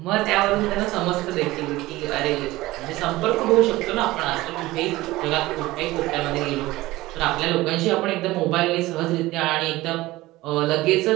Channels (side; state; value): left; quieter; 18.4 dB